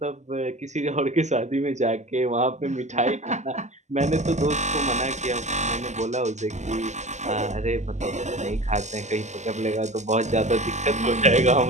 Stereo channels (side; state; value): left; late; 0.34 ms